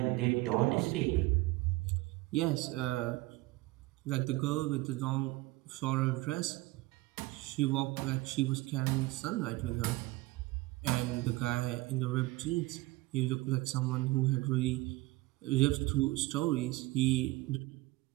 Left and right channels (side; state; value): left; quieter; 20.8 dB